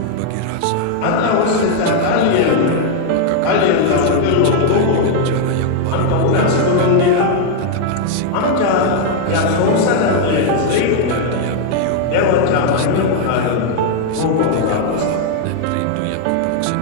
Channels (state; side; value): different; both; correlation 0.00